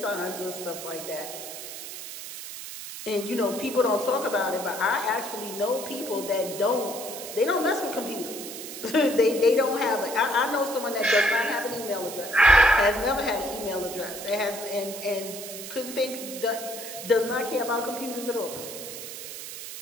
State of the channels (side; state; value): right; noise; hiss, 10 dB below the sound